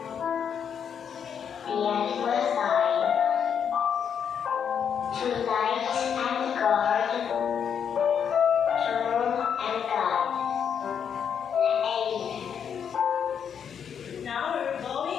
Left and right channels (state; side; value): quieter; right; 7.7 dB